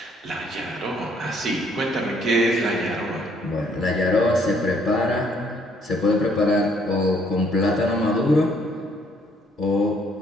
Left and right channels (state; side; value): normal; both; correlation 0.66